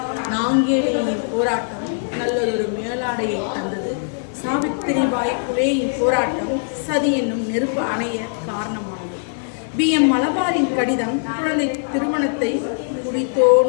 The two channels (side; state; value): right; silent; digital silence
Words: நாங்கேலியின் போராட்டம் நல்லதொரு மேலாடையை தந்தது. சாவித்திரிபாய் புலேயின் போராட்டம் சதி என்னும் நெருப்பு அணைய காரணமானது. BM மலபாரின் கடிதம் குழந்தை திருமணத்தை குடி